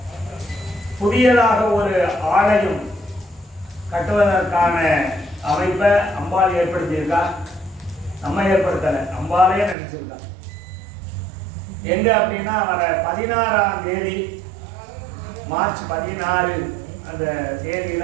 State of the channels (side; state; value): left; drops out; at 9.8 s